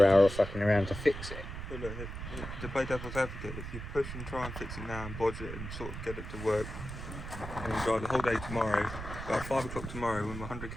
hour of fucking around to fix it. But look, to play devil's advocate, if you push and try and fix it now and bodge it and sort of get it to work, and you drive the whole day tomorrow, about 5 o'clock tomorrow, when we're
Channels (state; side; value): noise; right; rumble, 8 dB below the sound